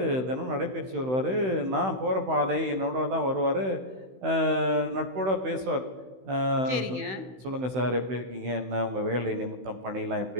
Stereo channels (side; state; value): left; late; 16 ms